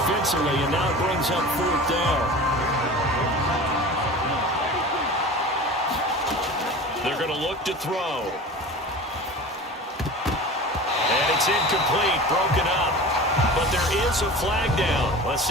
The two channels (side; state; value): both; normal; correlation 0.36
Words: and now it brings up fourth down. They're going to look to throw. And it's incomplete, broken up. But there is a flag down. Let's